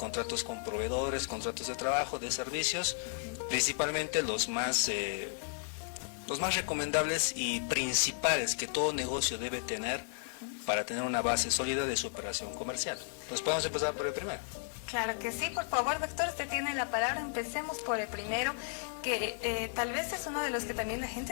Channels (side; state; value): right; silent; digital silence